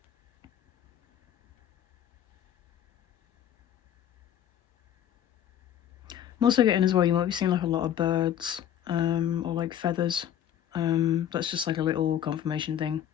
I'm also getting as well, you might be seeing like a lot of birds, or like feathers. That's just like a little confirmation thing,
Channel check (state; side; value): quieter; right; 10.3 dB